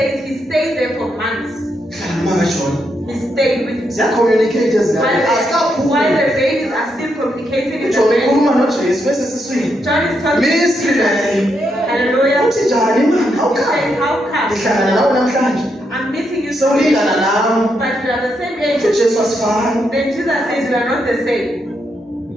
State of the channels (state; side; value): normal; both; correlation 0.80